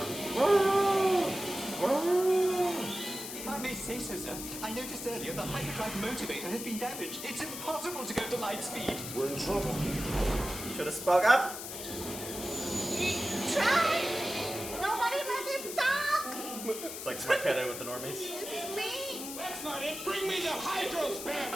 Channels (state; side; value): noise; left; hiss, 8 dB below the sound